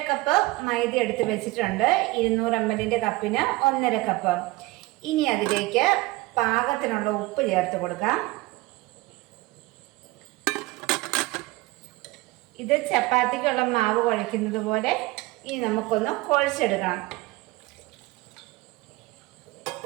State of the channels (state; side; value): quieter; left; 20.8 dB